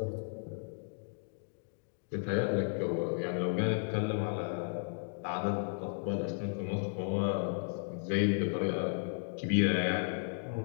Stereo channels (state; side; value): silent; right; digital silence